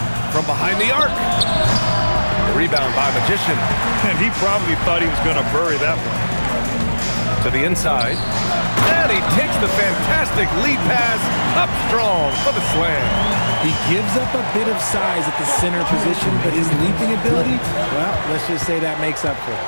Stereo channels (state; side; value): inverted; both; correlation -1.00